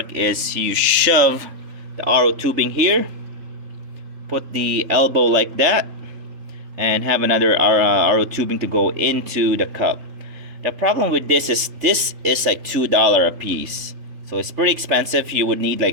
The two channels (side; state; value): left; late; 3.4 ms